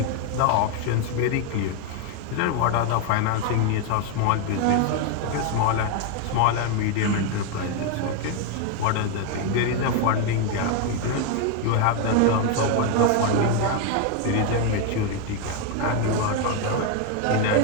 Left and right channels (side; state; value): both; different; correlation 0.01